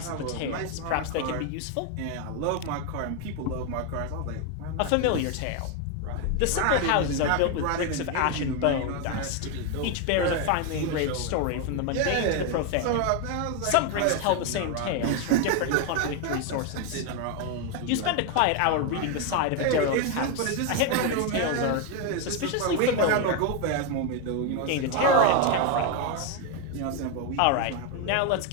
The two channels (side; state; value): both; different; correlation 0.01